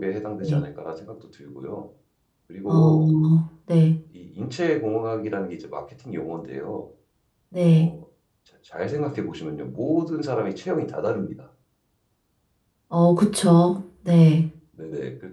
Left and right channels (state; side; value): identical; both; correlation 1.00